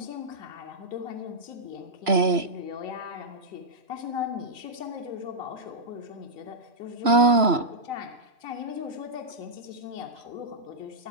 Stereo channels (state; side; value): late; left; 3.0 ms